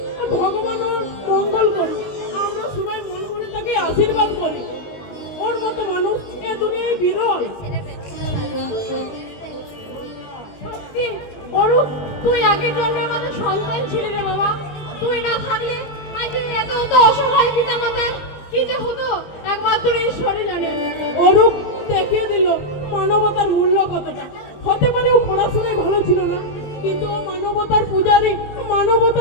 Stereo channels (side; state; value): right; late; 20 ms